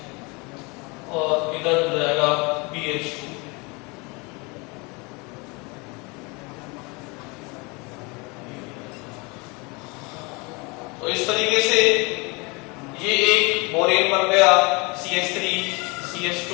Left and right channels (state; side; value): quieter; right; 28.1 dB